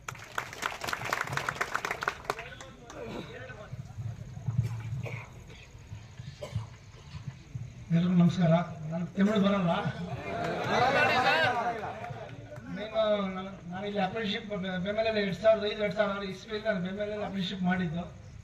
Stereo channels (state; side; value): identical; both; correlation 1.00